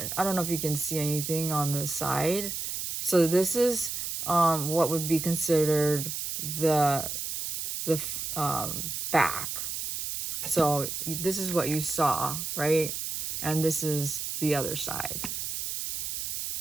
don't know if you can see anything on the side. So this is what would be considered the back. So this is what you saw, right? And this is the other side.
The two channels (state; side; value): noise; right; hiss, 4 dB below the sound